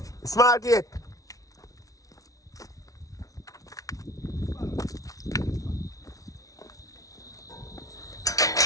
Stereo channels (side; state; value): right; late; 0.17 ms